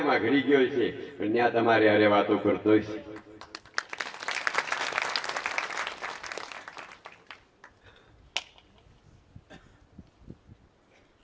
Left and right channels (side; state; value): both; identical; correlation 1.00